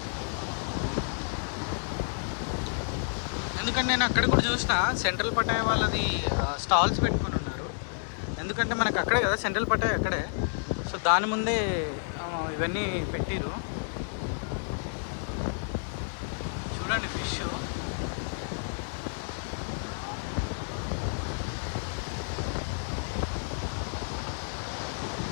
ఎందుకంటే నేను అక్కడ కూడా చూసిన సెంట్రల్ పటాయా వాళ్ళది స్టాల్స్ పెట్టుకొని ఉన్నారు. ఎందుకంటే మనకు అక్కడే కదా సెంట్రల్ పటాయా అక్కడే, సో దాని ముందే ఇవన్నీ పెట్టిరు. చూడండి ఫిష్.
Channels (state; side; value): silent; right; digital silence